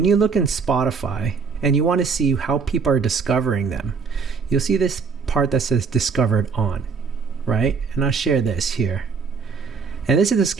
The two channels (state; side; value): quieter; left; 5.4 dB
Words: you look in Spotify and you want to see how people are discovering them, you'll see this part that says discovered on, right? And I'll share this here. And this is the